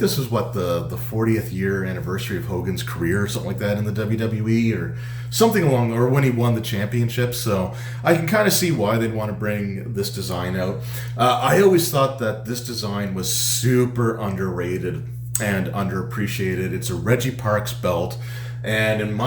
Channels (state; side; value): identical; both; correlation 1.00